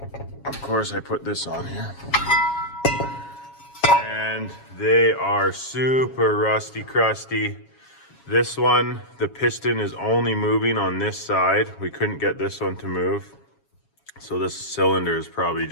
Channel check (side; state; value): right; late; 7.3 ms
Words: Of course, I put this on here. And they are super rusty crusty. This one, the piston is only moving on this side. We couldn't get this one to move. So this cylinder is probably